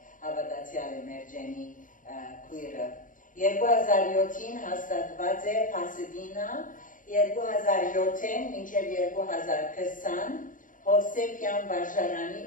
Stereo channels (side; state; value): right; late; 0.38 ms